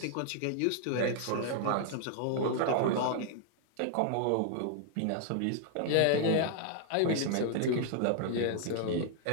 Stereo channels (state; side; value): different; both; correlation 0.00